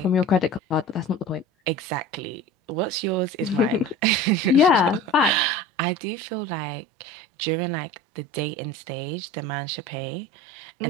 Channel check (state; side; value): drops out; left; at 5.5 s